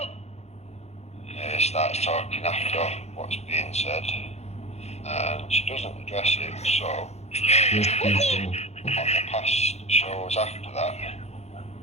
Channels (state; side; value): late; right; 0.31 ms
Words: Starts talking after what's being said, and she doesn't address it. So on the past shows after that,